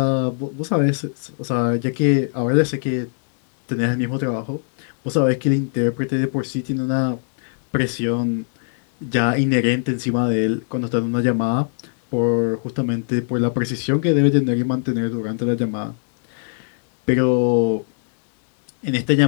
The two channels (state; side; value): silent; right; digital silence